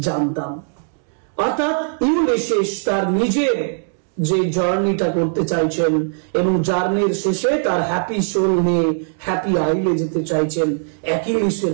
জানতাম। অর্থাৎ ইউলিসিস তার নিজের যে জার্নিটা করতে চাইছেন এবং জার্নির শেষে তার হ্যাপি সোল নিয়ে হ্যাপি আইলে যেতে চাইছেন, অ্যাকিলিসের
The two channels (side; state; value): left; silent; digital silence